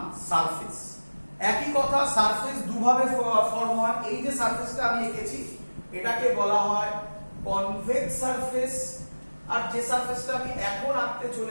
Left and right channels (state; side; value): inverted; both; correlation -1.00